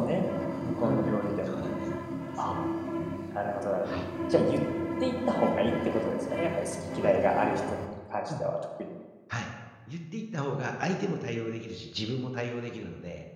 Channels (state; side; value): identical; both; correlation 1.00